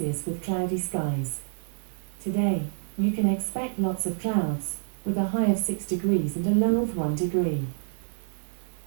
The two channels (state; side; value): silent; left; digital silence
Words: with cloudy skies. Today, you can expect lots of clouds, with a high of 6 degrees and a low of 1 degree.